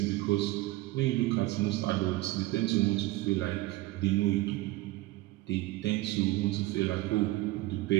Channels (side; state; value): left; quieter; 18.9 dB